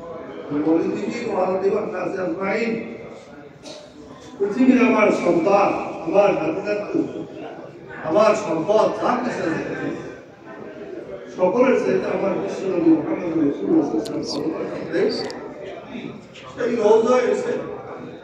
মিন ওয়ালিদিহি ওয়া ওয়ালিদি ওয়ান নাসি আজমাইন। পৃথিবীর আমার সন্তান, আমার নাতি-নাতু, আমার সম্পদ, যা কিছু আছে সকলের চাইতে আমার বিশ্বনবী মুহাম্মদ রাসূলুল্লাহ সাল্লাল্লাহু আলাইহি ওয়াসাল্লাম সেই রওজায় এসে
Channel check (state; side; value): identical; both; correlation 1.00